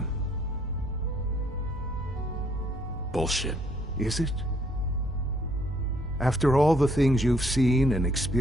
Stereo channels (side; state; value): both; normal; correlation 0.67